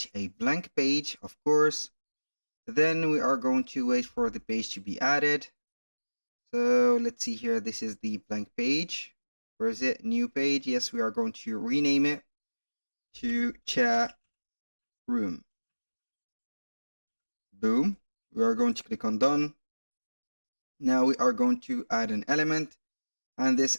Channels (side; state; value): both; inverted; correlation -1.00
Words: a blank page, of course. Then we are going to wait for the page to be added. So let's see here. This is the blank page. Where is it? New page. Yes, we are going to rename it to chat room. Boom. We are going to click on done. Now we are going to add an element, and